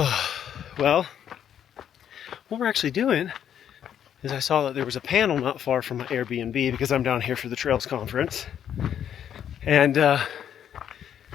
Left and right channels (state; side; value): quieter; right; 9.5 dB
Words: well, what we're actually doing is I saw that there was a panel not far from my Airbnb because I'm down here for the Trails Conference. And I